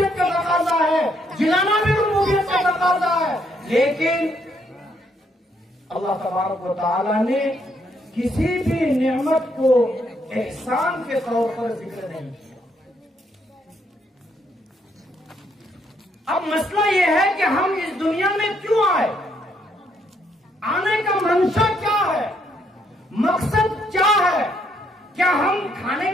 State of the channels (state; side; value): normal; both; correlation 0.72